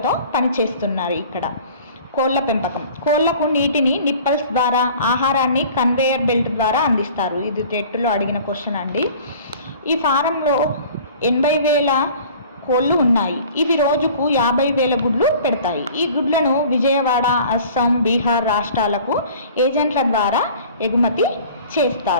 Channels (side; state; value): both; inverted; correlation -0.46